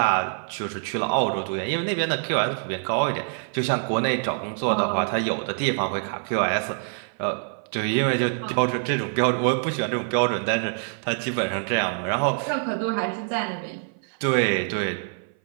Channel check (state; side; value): silent; left; 56 dB below the other